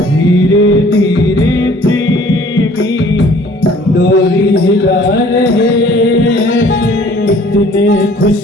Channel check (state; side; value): normal; both; correlation 0.54